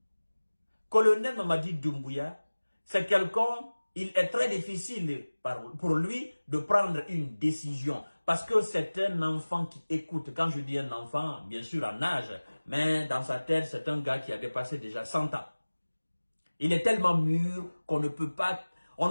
Colonel Mamadi Doumbouya, c'est quelqu'un, il est très difficile pour lui de prendre une décision. Parce que c'est un enfant qui écoute. Quand je dis un enfant, bien sûr en âge, mais dans sa tête, c'est un gars qui a dépassé déjà 100 ans. Il est tellement mûr qu'on ne peut pas,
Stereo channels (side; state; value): both; inverted; correlation -1.00